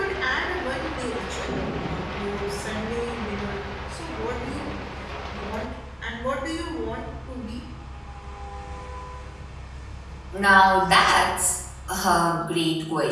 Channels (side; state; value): both; identical; correlation 1.00